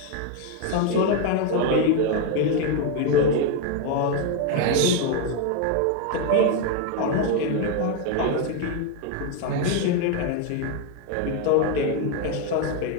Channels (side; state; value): both; different; correlation 0.01